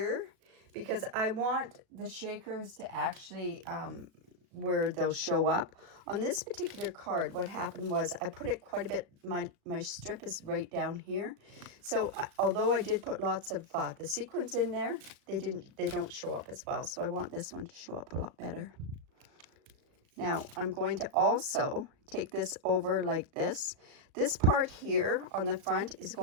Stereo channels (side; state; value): left; late; 37 ms